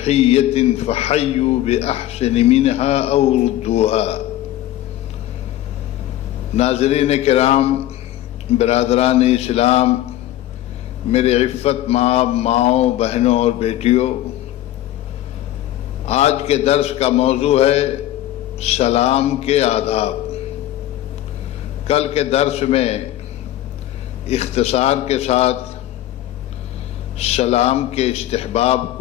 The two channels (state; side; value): quieter; right; 13.9 dB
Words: فَحَيُّوا بِأَحْسَنَ مِنْهَا أَوْ رُدُّوهَا۔ ناظرین کرام، برادران اسلام، میرے عفت ماؤں، بہنوں اور بیٹیوں، آج کے درس کا موضوع ہے سلام کے آداب۔ کل کے درس میں اختصار کے ساتھ سلام کے استحباب